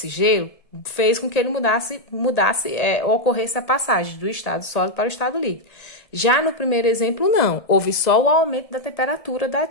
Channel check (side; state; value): right; late; 1.7 ms